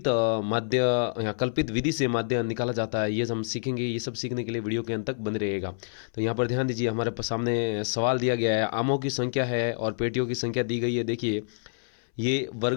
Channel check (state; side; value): silent; right; 60 dB below the other